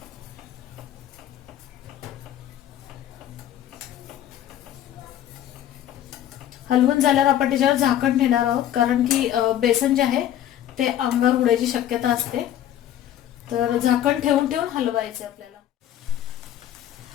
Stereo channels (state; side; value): quieter; right; 11.5 dB